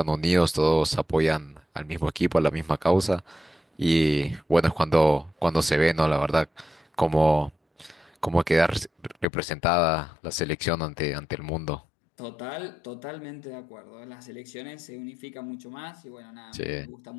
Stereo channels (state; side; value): drops out; right; at 9.2 s